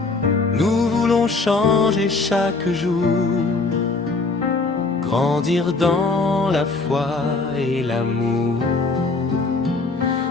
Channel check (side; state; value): right; quieter; 3.7 dB